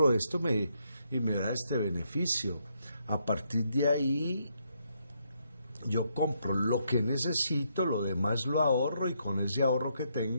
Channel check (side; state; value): both; inverted; correlation -0.76